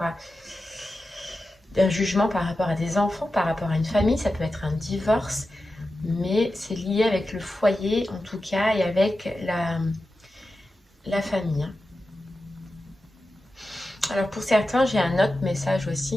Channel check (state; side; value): normal; both; correlation 0.92